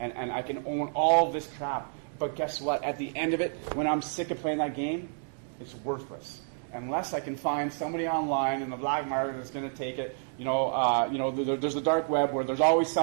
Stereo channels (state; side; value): silent; left; digital silence